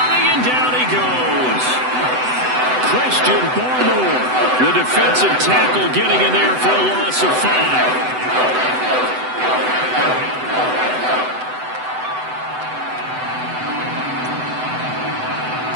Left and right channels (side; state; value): left; late; 7.9 ms